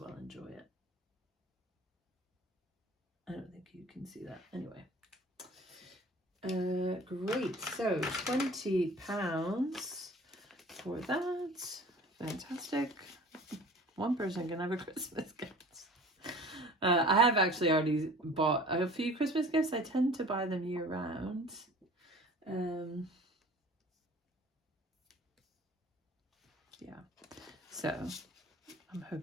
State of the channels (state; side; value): normal; both; correlation 0.45